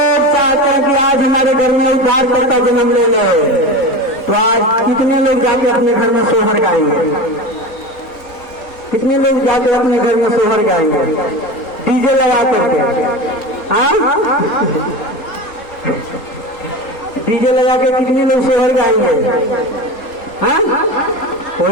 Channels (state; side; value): late; right; 3.8 ms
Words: चाहते हैं कि आज हमारे घर में उद्धार करता जन्म ले ले, आज कितने लोग जाके अपने घर में सोहर गाएंगे? कितने लोग जाके अपने घर में सोहर गाएंगे डीजे लगा करके? डीजे लगा के कितने लोग सोहर गाएंगे?